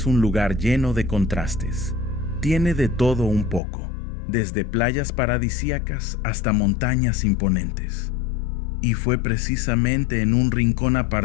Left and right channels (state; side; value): drops out; right; at 3.6 s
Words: un lugar lleno de contrastes. Tiene de todo un poco, desde playas paradisíacas hasta montañas imponentes. Y fue precisamente en un rincón